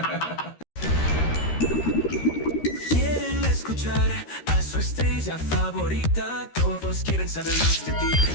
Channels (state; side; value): late; right; 13 ms